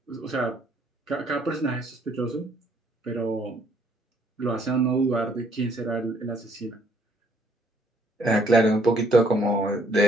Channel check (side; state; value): both; normal; correlation 0.66